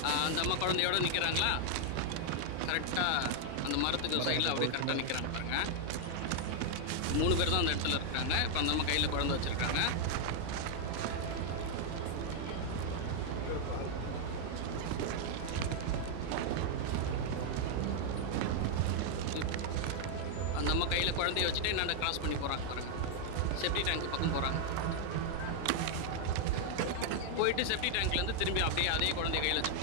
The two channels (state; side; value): different; both; correlation 0.00